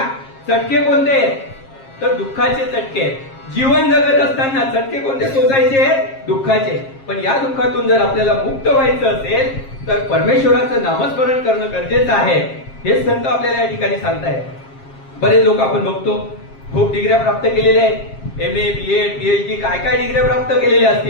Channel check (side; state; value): right; late; 7.5 ms